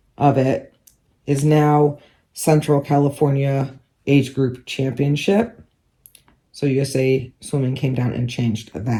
of it, is now Central California Age Group Championship. So USA Swimming came down and changed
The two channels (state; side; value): identical; both; correlation 1.00